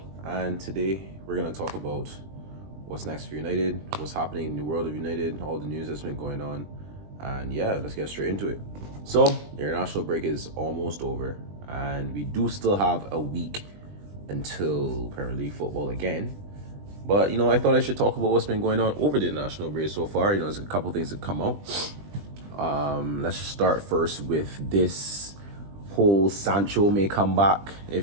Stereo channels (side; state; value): left; late; 20 ms